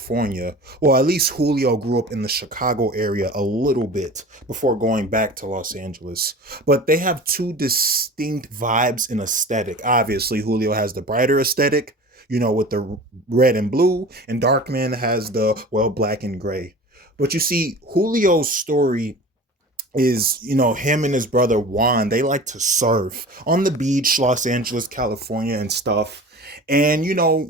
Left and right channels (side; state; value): both; normal; correlation 0.38